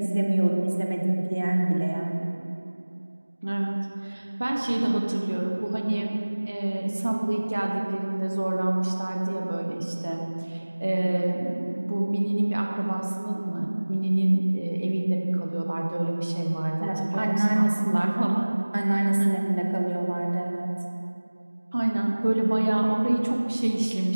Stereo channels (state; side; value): inverted; both; correlation -1.00